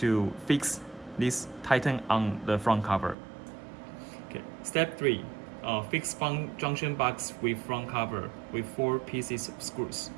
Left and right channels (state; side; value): drops out; left; at 3.2 s